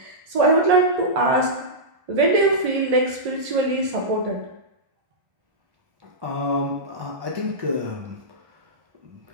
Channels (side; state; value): left; late; 1.8 ms